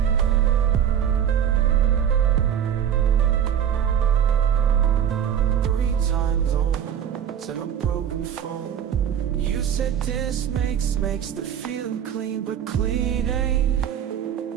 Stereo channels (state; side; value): quieter; left; 9.0 dB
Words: 3 times over, said a broken phone. You said this makes the feeling clean, but clean ain't.